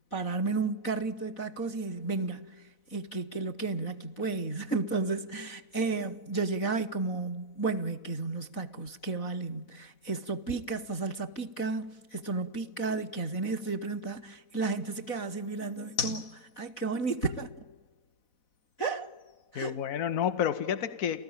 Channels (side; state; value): right; late; 4.0 ms